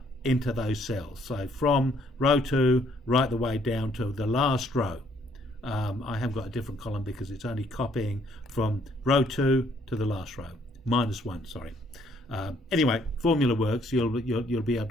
into those cells. So from row 2 right the way down to the last row. I have got a different column because it's only copying from row 2 to the last row. -1, sorry. Anyway, formula works. You'll be able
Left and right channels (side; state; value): both; normal; correlation 0.66